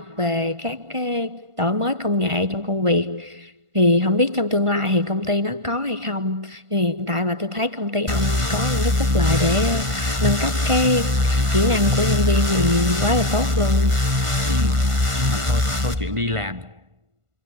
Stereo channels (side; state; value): left; late; 1.5 ms